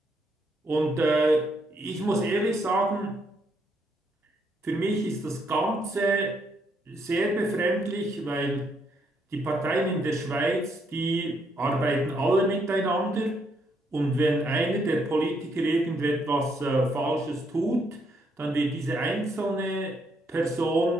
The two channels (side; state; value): both; normal; correlation 0.74